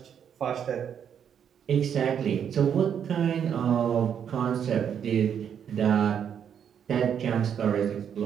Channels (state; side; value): quieter; left; 8.3 dB